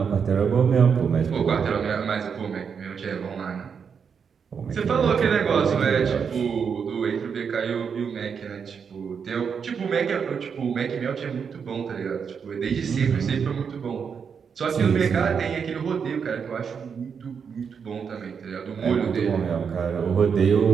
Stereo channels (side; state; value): left; quieter; 6.5 dB